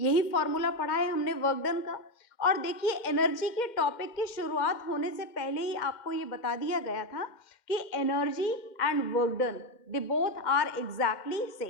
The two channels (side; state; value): right; late; 2.1 ms